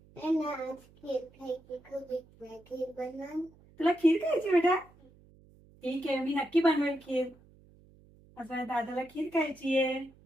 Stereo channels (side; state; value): right; noise; hum, 27 dB below the sound